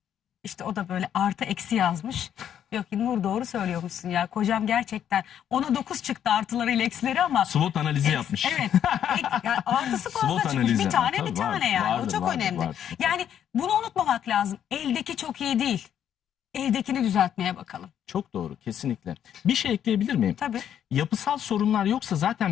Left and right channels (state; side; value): quieter; right; 9.6 dB